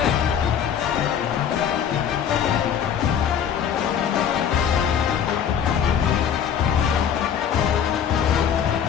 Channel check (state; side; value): quieter; right; 8.3 dB